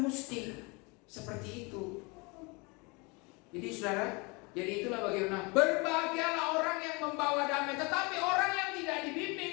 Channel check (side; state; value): right; quieter; 28.6 dB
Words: mesti seperti itu. Jadi saudara, jadi itulah bagaimana berbahagialah orang yang membawa damai. Tetapi orang yang tidak